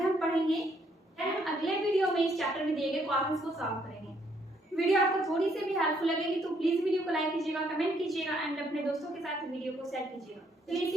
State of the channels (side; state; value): both; normal; correlation 0.69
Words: हम पढ़ेंगे। हम अगले वीडियो में इस चैप्टर में दिए गए क्वेश्चंस को सॉल्व करेंगे। वीडियो आपको थोड़ी सी भी हेल्पफुल लगेगी तो प्लीज वीडियो को लाइक कीजिएगा, कमेंट कीजिएगा एंड अपने दोस्तों के साथ वीडियो को शेयर कीजिएगा। तो